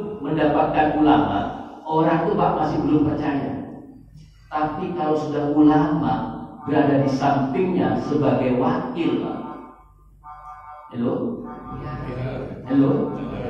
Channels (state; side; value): identical; both; correlation 1.00